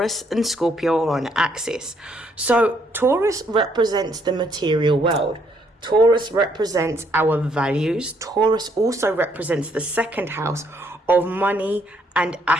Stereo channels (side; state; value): both; normal; correlation 0.70